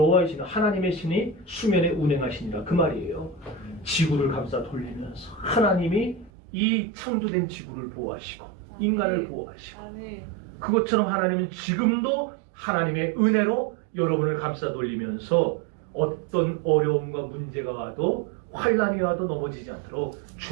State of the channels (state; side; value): drops out; left; at 6.3 s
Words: 신은 하나님의 신이 수면에 운행하시니라 그 말이에요. 지구를 감싸 돌리면서 하나님이 이 창조된 지구를 보호하시고 인간을 보호하시고 아멘. 그것처럼 하나님은 지금도 하나님의 은혜로 여러분을 감싸 돌리면서 어떤 어려움과 문제가 와도 환난이 와도 넘어지지 않도록